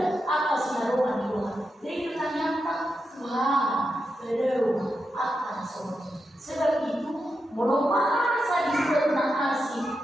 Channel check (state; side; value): normal; both; correlation 0.87